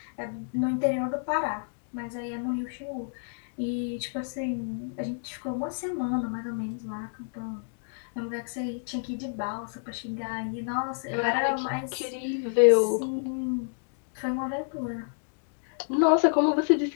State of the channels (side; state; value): right; silent; digital silence